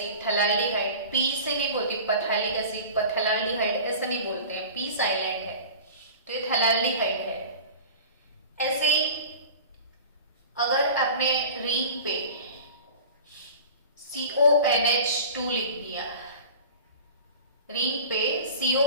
थैलाल्डिहाइड P से नहीं बोलते, पथैलिक एसिड पथैलाल्डिहाइड ऐसा नहीं बोलते हैं, P साइलेंट है, तो ये थैलाल्डिहाइड है। ऐसे ही अगर आपने रिंग पे CONH2 लिख दिया, रिंग पे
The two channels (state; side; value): inverted; both; correlation -0.38